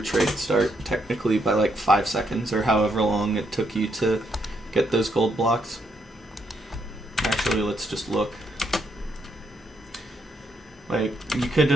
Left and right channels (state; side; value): normal; both; correlation 0.76